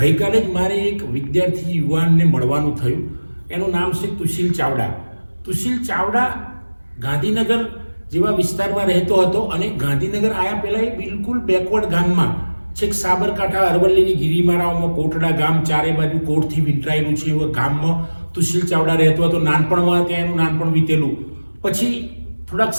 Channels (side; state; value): both; inverted; correlation -1.00